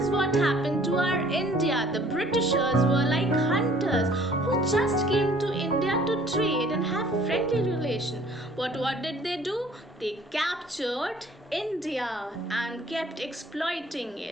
what happened to our India. The Britishers were like hunters who just came to India to trade and have friendly relation. What did they do? They captured India and kept exploiting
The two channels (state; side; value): normal; both; correlation 0.55